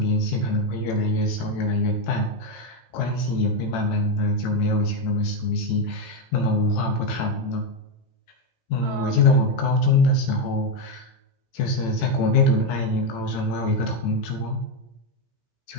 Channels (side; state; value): right; late; 18 ms